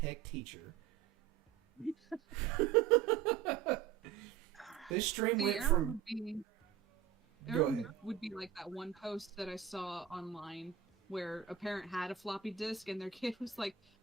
teacher. This stream went from. Go ahead. Would be like that one post that I saw online where a parent had a floppy disk and their kid was like,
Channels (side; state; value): left; quieter; 8.9 dB